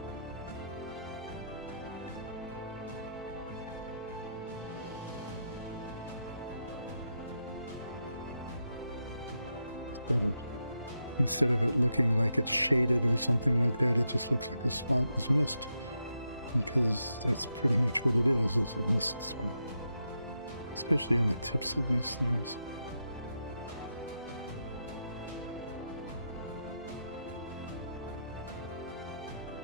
Instead of instead of it looking like it's shaded or something like that, it just looks like a spot was missed. Because that's pretty much what it is. It's a mist spot. Especially on the tips of these things.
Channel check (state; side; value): inverted; both; correlation -0.84